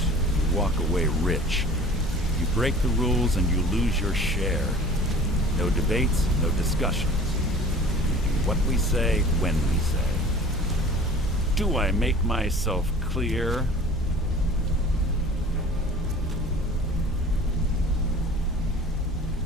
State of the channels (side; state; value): both; normal; correlation 0.45